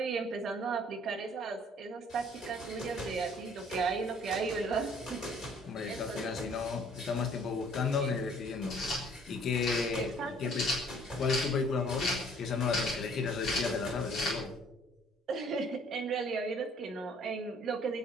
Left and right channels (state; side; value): normal; both; correlation 0.58